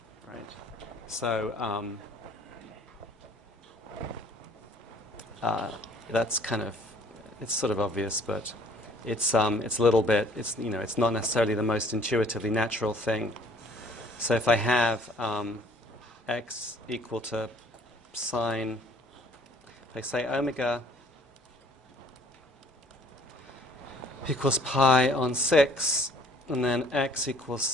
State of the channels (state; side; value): normal; both; correlation 0.57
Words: right? So that's kind of, it's sort of obvious, but it's a little bit, it's not necessarily the most intuitively natural thing. So if I have x equal to sine, if I say omega equals pi on 6, and then x equals